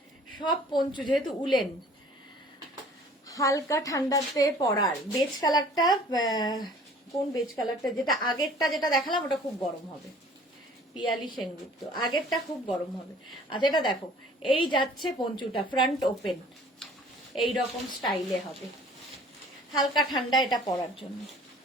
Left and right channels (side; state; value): both; normal; correlation 0.51